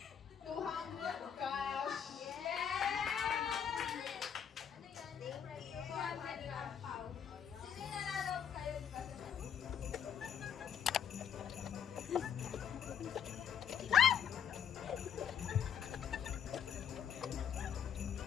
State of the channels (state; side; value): quieter; right; 8.3 dB